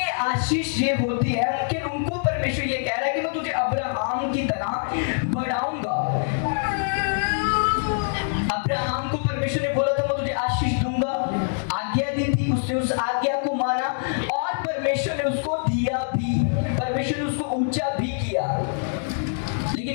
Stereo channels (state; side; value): silent; right; 62 dB below the other